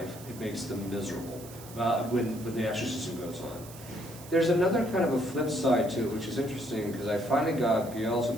it makes them miserable when the exorcism goes on. There's another kind of a flip side to it, which is interesting, because I finally got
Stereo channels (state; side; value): noise; right; hiss, 17 dB below the sound